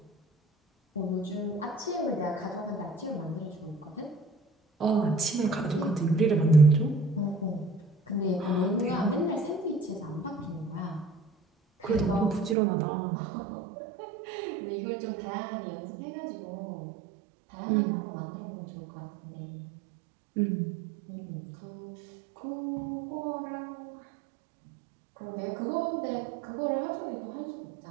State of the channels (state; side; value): drops out; left; at 12.6 s